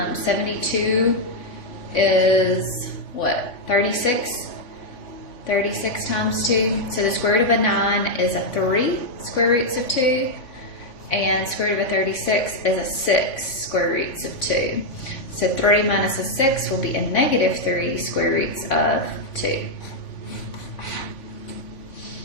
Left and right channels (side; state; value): right; late; 3.5 ms